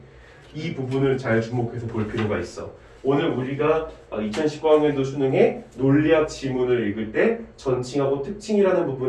이 부분을 잘 주목해서 볼 필요가 있어. 오늘 우리가 2019학년도 수능에 논리학 지문을 읽을 때 전칭하고 특칭이라는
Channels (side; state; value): both; identical; correlation 1.00